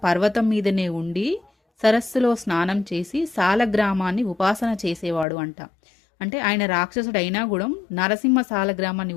పర్వతం మీదనే ఉండి సరస్సులో స్నానం చేసి సాలగ్రామాన్ని ఉపాసన చేసేవాడు అంట. అంటే ఆయన రాక్షసుడు అయినా కూడా నరసింహ సాలగ్రామాన్ని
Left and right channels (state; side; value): drops out; right; at 5.2 s